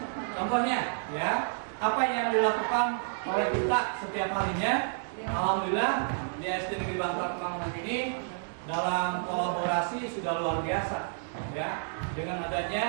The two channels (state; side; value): silent; left; digital silence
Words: Contohnya, ya, apa yang dilakukan oleh kita setiap harinya, alhamdulillah di SD Negeri Bangka Kemang ini dalam kolaborasi sudah luar biasa, ya, dengan